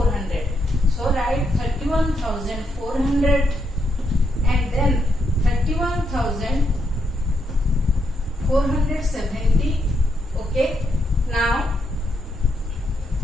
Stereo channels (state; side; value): normal; both; correlation 0.79